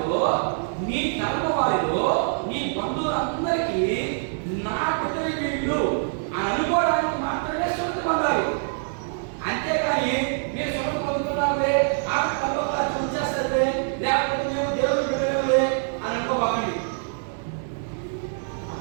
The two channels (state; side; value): silent; left; 62 dB below the other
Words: నీ తరము వారిలో, నీ బంధువులందరికీ నా బిడ్డలు వీళ్ళు అని అనుకోవడానికి మాత్రమే సున్నతి పొందాలి. అంతేకాని మీరు సున్నతి పొందుతున్నారే ఆ తల్లోలా చూసేస్తే లేకపోతే మేము దేవుడు బిడ్డలే అని అనుకోబాకండి.